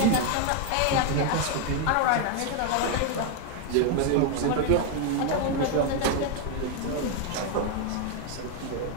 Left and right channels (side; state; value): both; different; correlation 0.01